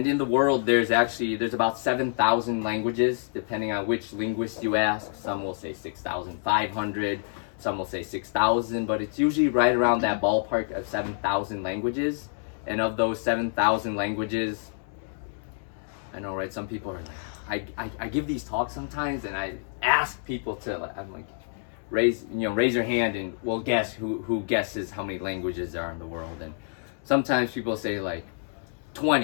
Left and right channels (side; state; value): right; silent; digital silence